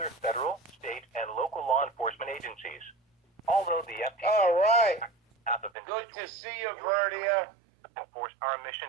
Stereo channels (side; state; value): left; drops out; at 5.7 s